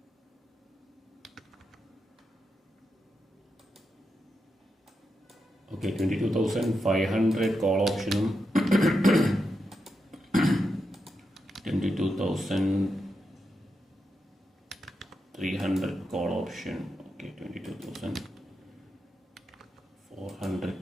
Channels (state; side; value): normal; both; correlation 0.86